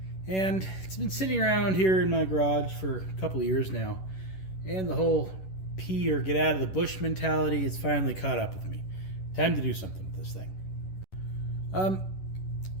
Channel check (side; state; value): right; late; 11 ms